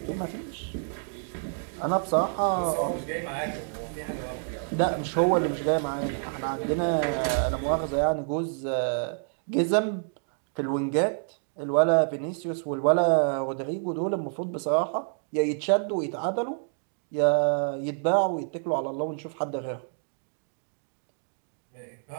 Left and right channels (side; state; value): left; silent; digital silence